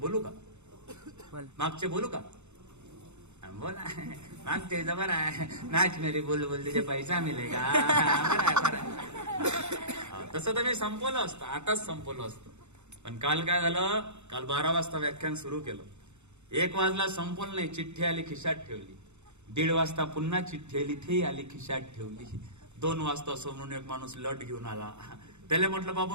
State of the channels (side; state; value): left; late; 0.82 ms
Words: का? मागचे बोलू का? बोला मागचे जबर आहे. नाच मेरी बोल तुझे पैसा मिळेगा. तसं तर मी संपवलं असतं, आताच संपवलं असतं. पण काल काय झालं, काल 12 वाजता व्याख्यान सुरू केलं. 1 वाजला संपवलं नाही, चिठ्ठी आली खिशात ठेवली. 1:30 वाजता पुन्हा चिठ्ठी आली, ती आली खिशात ठेवली. 2 वाजता समोरून एक माणूस लट घेऊन आला. त्याला म्हटलं